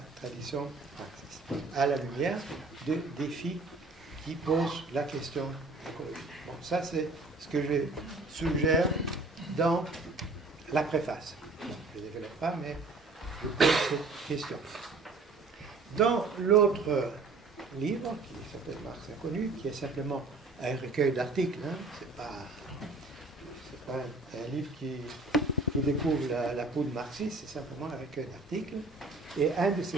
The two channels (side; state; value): left; quieter; 3.5 dB